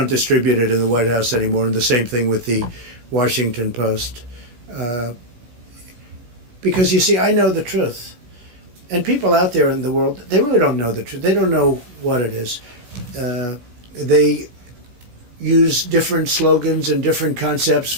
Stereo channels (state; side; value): late; left; 16 ms